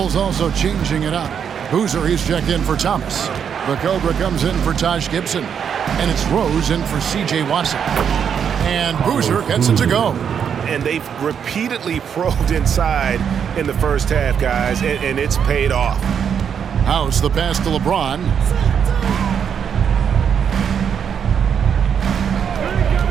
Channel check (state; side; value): quieter; left; 7.7 dB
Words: also changing it up. Boozer, he's checked in for Thomas. The Cobra comes in for Taj Gibson. And it's Rose in for C.J. Watson. And Boozer gets it to go. And they've repeatedly probed inside in the first half, guys, and it's paid off. House the pass to LeBron.